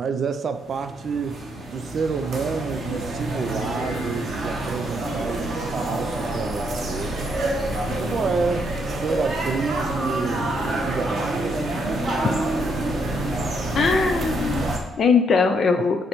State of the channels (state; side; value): normal; both; correlation 0.74